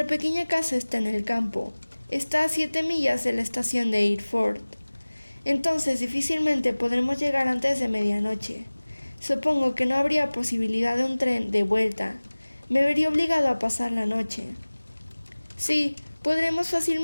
pequeña casa está en el campo. Está a 7 millas de la estación de Eyford. Entonces difícilmente podremos llegar antes de medianoche. Supongo que no habría posibilidad de un tren de vuelta. Me vería obligado a pasar la noche. Sí, podremos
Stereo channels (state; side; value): inverted; both; correlation -1.00